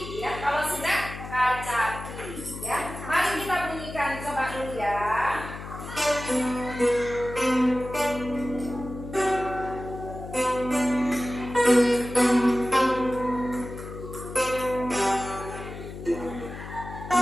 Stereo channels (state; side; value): noise; left; hum, 11 dB below the sound